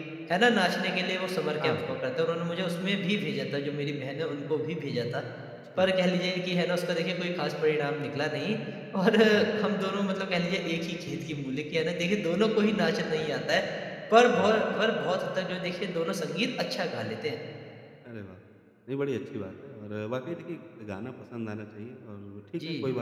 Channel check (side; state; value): both; identical; correlation 1.00